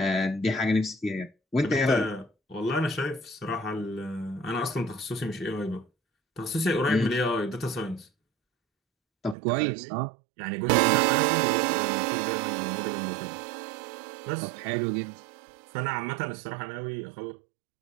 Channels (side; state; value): left; drops out; at 9.3 s